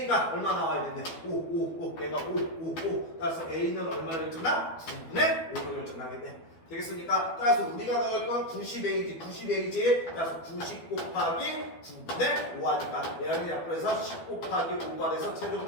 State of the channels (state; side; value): late; right; 12 ms